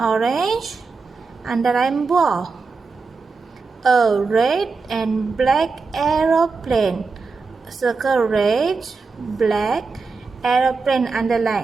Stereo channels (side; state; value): left; quieter; 4.4 dB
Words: orange. Underline ball. A red and black aeroplane. Circle red, black, aeroplane,